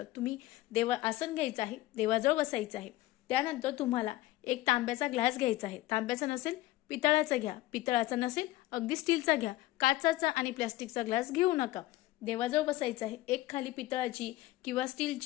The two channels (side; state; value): right; quieter; 17.0 dB